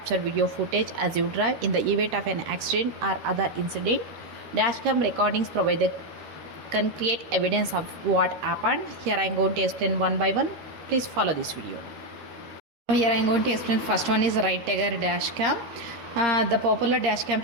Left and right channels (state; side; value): late; left; 13 ms